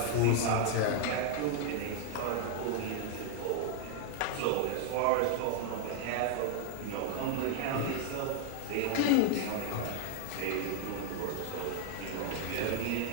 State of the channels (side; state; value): both; different; correlation 0.00